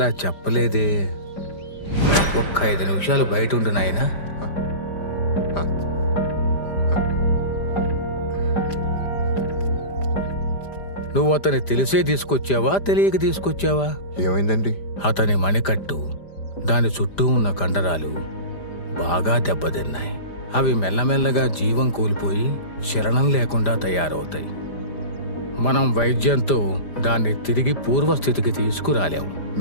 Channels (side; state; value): right; late; 5.0 ms